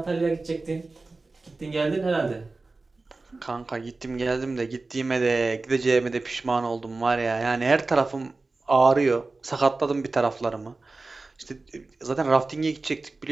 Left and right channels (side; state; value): left; quieter; 3.5 dB